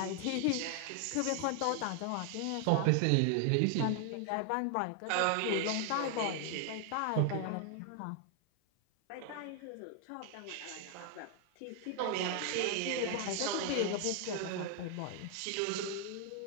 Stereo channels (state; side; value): different; both; correlation 0.00